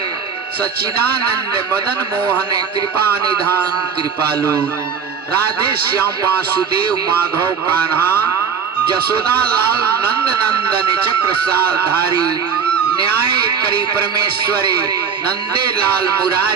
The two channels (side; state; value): left; quieter; 6.6 dB